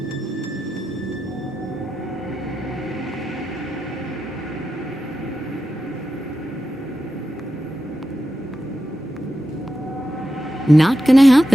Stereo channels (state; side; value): normal; both; correlation 0.89